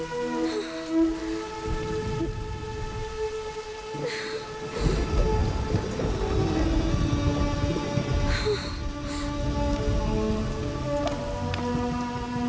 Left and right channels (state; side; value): identical; both; correlation 1.00